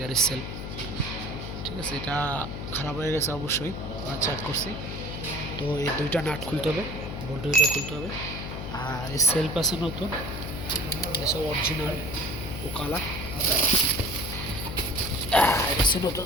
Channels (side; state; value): left; noise; hum, 7 dB below the sound